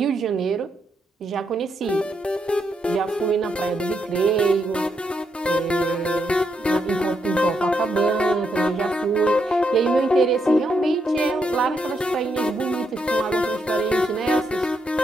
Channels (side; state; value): both; normal; correlation 0.80